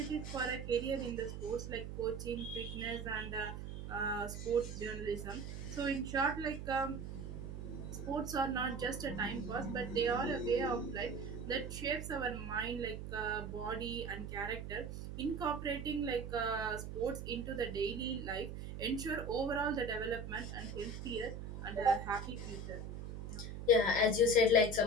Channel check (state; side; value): noise; right; hum, 7 dB below the sound